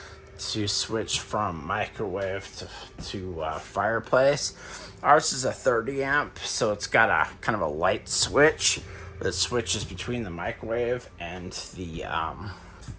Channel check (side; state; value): both; identical; correlation 1.00